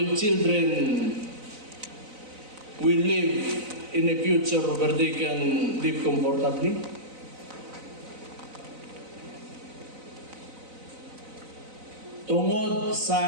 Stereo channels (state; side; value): late; left; 4.0 ms